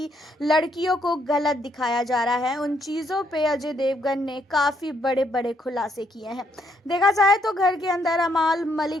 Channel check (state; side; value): normal; both; correlation 0.73